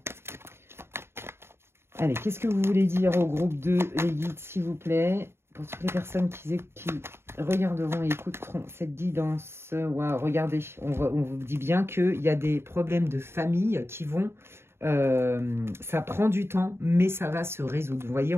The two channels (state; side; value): late; left; 0.12 ms